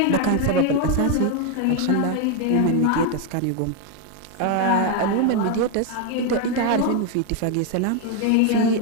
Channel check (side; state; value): both; different; correlation 0.01